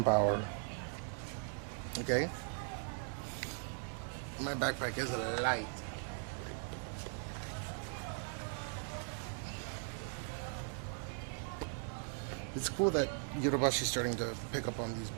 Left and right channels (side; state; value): left; silent; 52 dB below the other